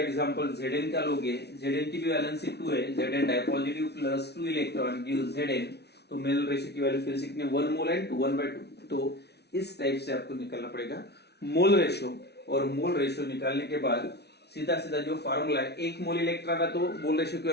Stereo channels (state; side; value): late; right; 0.49 ms